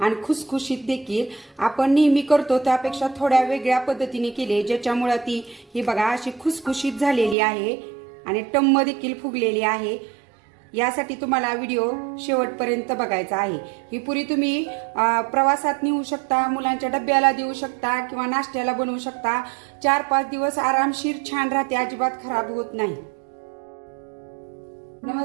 आणि खुसखुशीत देखील. आपण नेहमी करतो त्यापेक्षा थोड्या वेगळ्या पद्धतीने केली, ज्याच्यामुळे ती ही बघा अशी खुसखुशीत झालेली आहे आणि टम्म देखील फुगलेली आहे. यासाठी तुम्हाला व्हिडिओ शेवटपर्यंत बघायचा आहे. ही पुरी तुम्ही प्रवासात नेऊ शकता, मुलांच्या डब्याला देऊ शकता किंवा नाश्त्याला बनवू शकता. 4-5 दिवस आरामशीर छान राहते, अजिबात खराब होत नाही.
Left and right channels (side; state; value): left; drops out; at 7.4 s